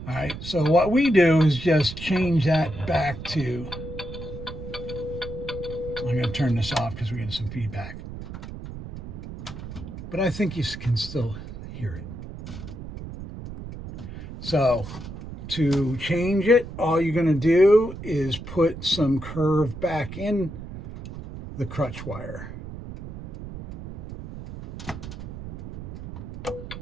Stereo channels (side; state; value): right; noise; rumble, 11 dB below the sound